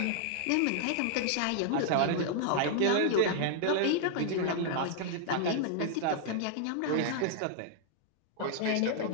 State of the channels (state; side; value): different; both; correlation -0.01